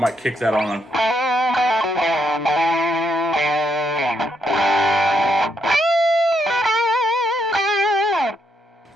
kick that on.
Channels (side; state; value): both; normal; correlation 0.77